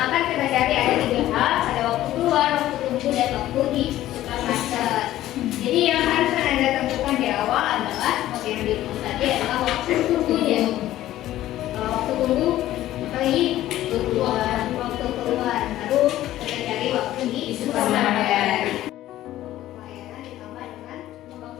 akan kita cari ada 3 hal, ada waktu keluar, waktu tunggu, dan waktu di supermarket. Jadi yang harus Anda tentukan di awal adalah seperti yang dirumus tadi adalah waktu tunggunya. Waktu tunggu kali keluar, waktu keluar, lalu kita cari waktu di supermarket. Pelayanan ditambah dengan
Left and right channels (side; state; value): right; quieter; 14.1 dB